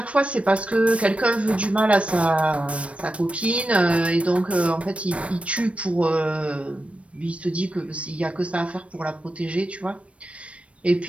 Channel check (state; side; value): late; left; 0.062 ms